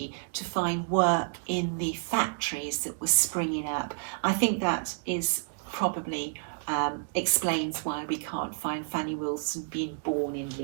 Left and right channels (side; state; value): left; silent; digital silence